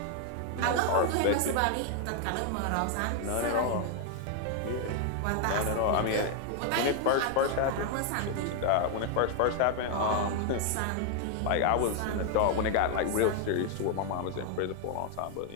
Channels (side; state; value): both; different; correlation 0.00